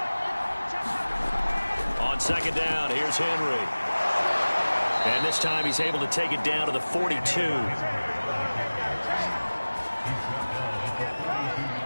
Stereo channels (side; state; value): both; inverted; correlation -1.00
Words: On second down, here's Henry. And this time he's able to take it down to the 42.